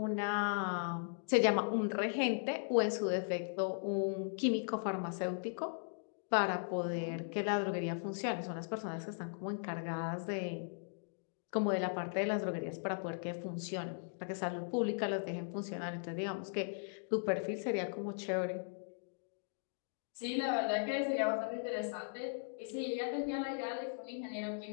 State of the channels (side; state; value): right; silent; digital silence